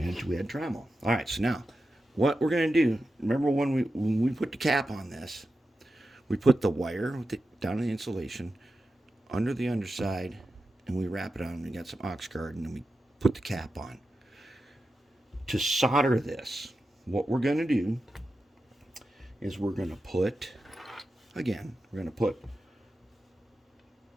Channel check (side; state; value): both; normal; correlation 0.91